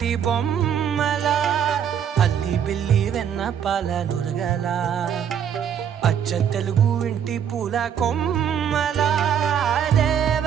బొమ్మలా అల్లి బిల్లి వెన్న పాల నురగలా అచ్చ తెలుగు ఇంటి పూల కొమ్మలా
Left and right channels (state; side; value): quieter; left; 8.5 dB